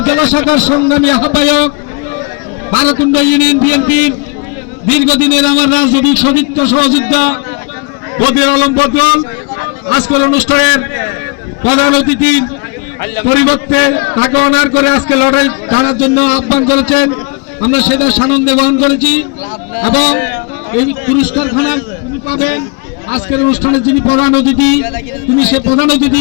জেলা শাখার সংগ্রামী আহ্বায়ক বারকুণ্ড ইউনিয়ন বিএনপির দীর্ঘদিনের আমার রাজনৈতিক সতীর্থ সহযোদ্ধা বদির আলম বদল আজকের অনুষ্ঠানের প্রধান অতিথির পরিবর্তে তাকে অনার করে আজকে লড়াই ছাড়ার জন্য আহ্বান করেছেন। আমরা সেটা সানন্দে গ্রহণ করেছি এবং এই পুরস্কারখানা তিনি পাবেন। আজকের অনুষ্ঠানে যিনি প্রধান অতিথি তিনি সে প্রধান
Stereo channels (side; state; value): right; quieter; 32.4 dB